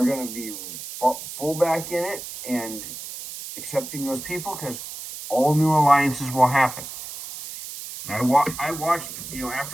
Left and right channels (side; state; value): right; noise; hiss, 10 dB below the sound